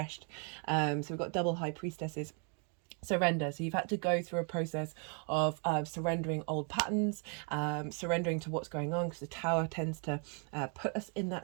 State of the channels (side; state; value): left; quieter; 39.4 dB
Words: So we've got double high priestesses. Surrender. So you've had to go through a process of surrendering old patterns, surrendering to what's going on, because the tower tends to put us in